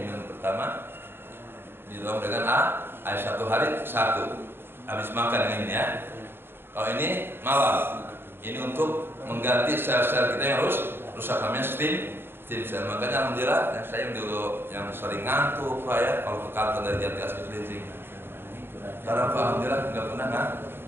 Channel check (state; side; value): late; left; 0.11 ms